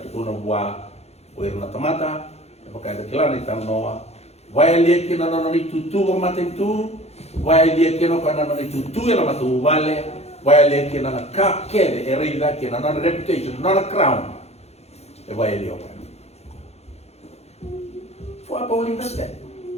tu na buah uir na tomata pakai ada kilan itu noa vai lihat kena nona itu tu mata itu vai lihat kena nona itu tu yang matu vale vai lihat kena na kakek erida kena nona reputation nona crown vai lihat for apa uling nasdaq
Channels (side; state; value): right; late; 0.31 ms